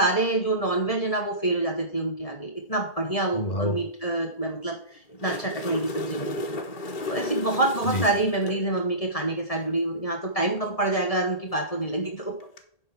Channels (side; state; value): right; late; 1.8 ms